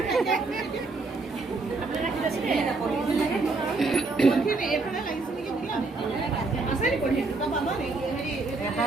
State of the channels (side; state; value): left; quieter; 3.6 dB